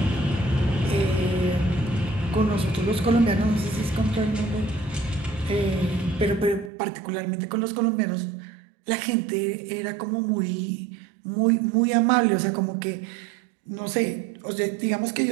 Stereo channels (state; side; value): drops out; left; at 6.7 s